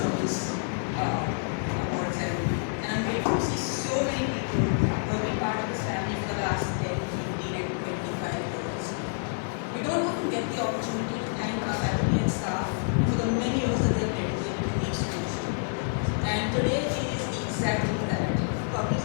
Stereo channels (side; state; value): right; silent; digital silence